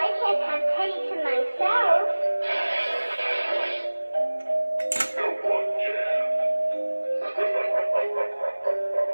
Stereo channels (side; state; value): both; inverted; correlation -1.00